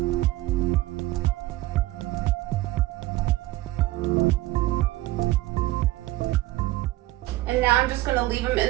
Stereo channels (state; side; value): quieter; left; 17.2 dB